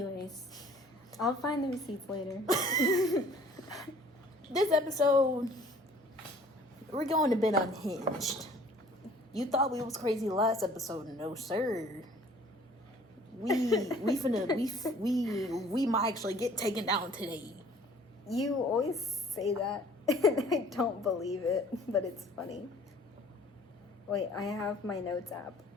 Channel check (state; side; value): normal; both; correlation 0.53